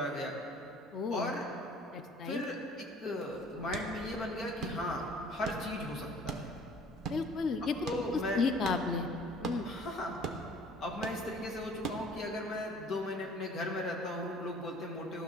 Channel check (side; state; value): both; normal; correlation 0.52